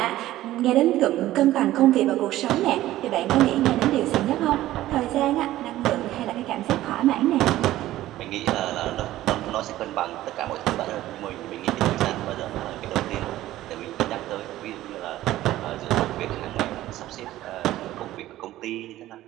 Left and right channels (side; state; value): left; quieter; 14.9 dB